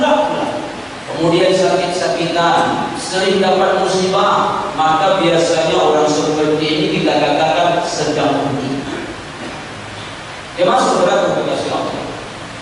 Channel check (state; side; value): identical; both; correlation 1.00